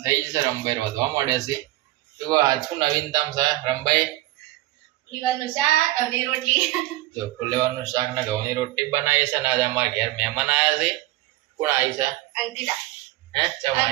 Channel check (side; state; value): left; quieter; 17.3 dB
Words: થઈ જશે, રમભાઈ વધવા મળે છે. તો આજ શું નવીનતામ છે રમભાઈ? ફુલેવાનું શાક અને રોટલી. જો ફુલેવાનું શાક ને ઘઉંની રોટલી બનાવી છે. ને આજે અમારા ઘેર મહેમાન આવ્યા છે. કોણ આવી છે? અંકિતા. હે